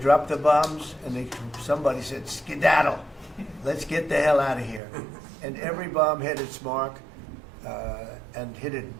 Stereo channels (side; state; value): left; drops out; at 4.8 s